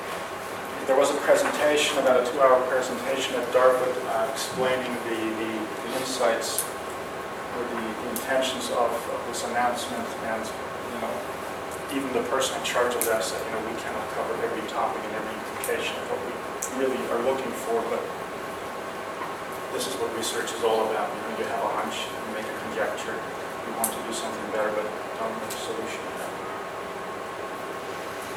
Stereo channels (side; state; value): both; identical; correlation 1.00